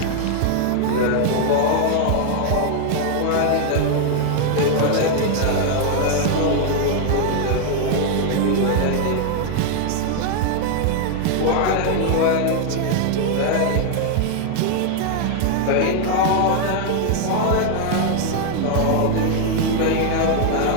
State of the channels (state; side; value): different; both; correlation 0.00